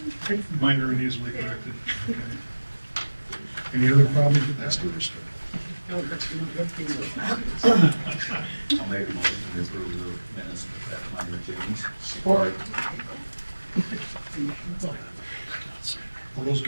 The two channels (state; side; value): inverted; both; correlation -1.00